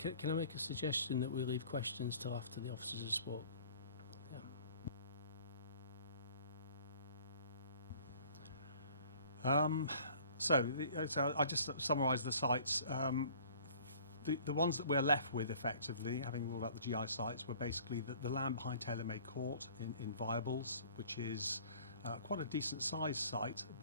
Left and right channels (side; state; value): both; inverted; correlation -0.51